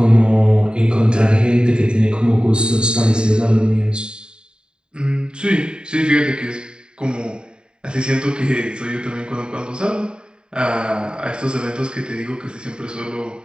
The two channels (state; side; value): late; left; 0.050 ms